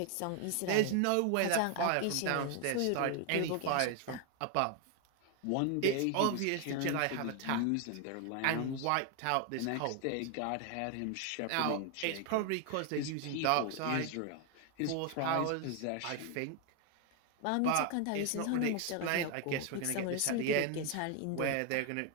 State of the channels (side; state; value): both; different; correlation 0.01